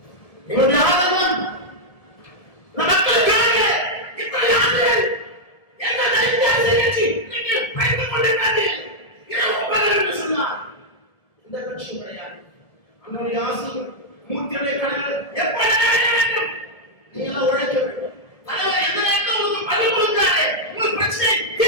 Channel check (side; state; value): right; late; 1.7 ms